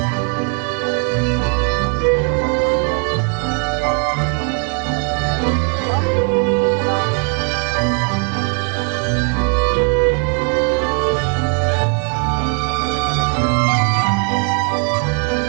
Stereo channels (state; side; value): quieter; left; 37.6 dB